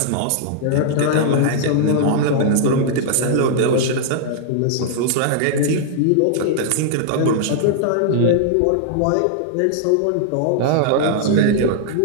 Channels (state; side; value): different; both; correlation -0.01